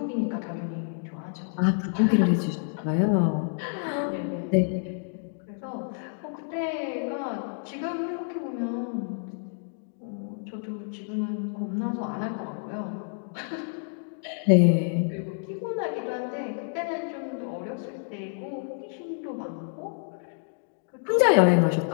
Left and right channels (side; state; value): right; silent; digital silence